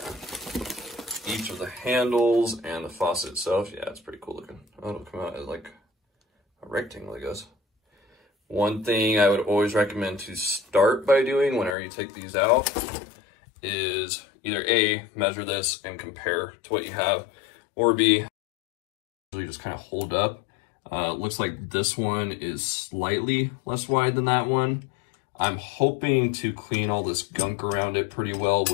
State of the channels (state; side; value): drops out; right; at 11.8 s